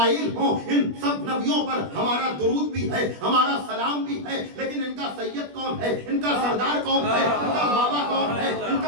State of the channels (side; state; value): left; late; 21 ms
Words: ہو، ان سب نبیوں پر ہمارا درود بھی ہے، ہمارا سلام بھی ہے. لیکن ان کا سید کون ہے؟ ان کا سردار کون ہے؟ ان کا بابا کون ہے؟ ان